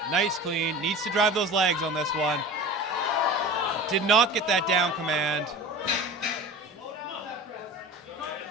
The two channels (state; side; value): normal; both; correlation 0.36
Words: Nice clean. Needs to drive those legs on this one. Did not get that down command.